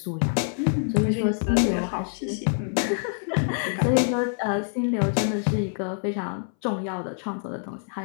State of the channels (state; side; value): silent; right; 59 dB below the other